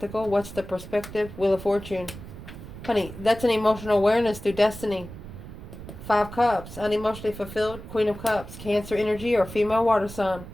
What's the perspective? Wheel of Fortune. Honey, that's an emotional awareness through destiny. 5 Cups. Unemotionally fulfilled. Queen of Cups. Cancer energy or female water sign.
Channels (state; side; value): noise; right; rumble, 13 dB below the sound